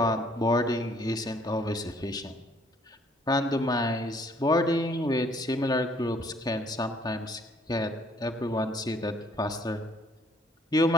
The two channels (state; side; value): normal; both; correlation 0.62